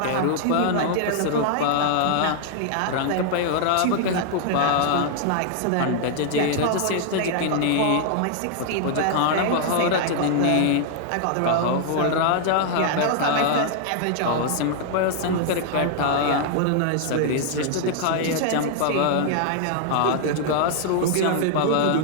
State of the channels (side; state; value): both; different; correlation 0.00